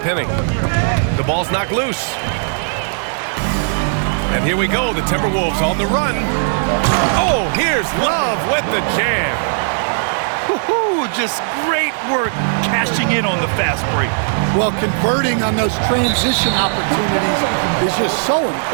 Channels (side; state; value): left; silent; 63 dB below the other